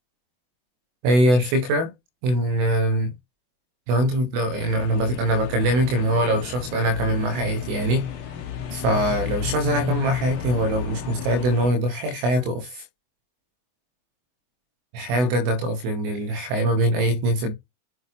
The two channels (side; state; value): left; late; 24 ms